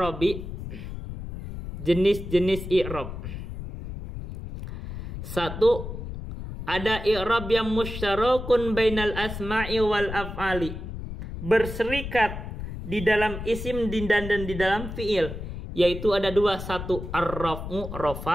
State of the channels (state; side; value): noise; left; rumble, 8 dB below the sound